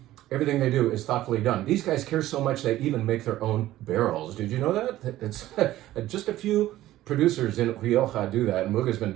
everything they do is thoughtfully done. These guys care so much they even make their own barrels. Did you know that? It's just a few producers in Rioja do that. Muga's been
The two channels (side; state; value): left; quieter; 14.8 dB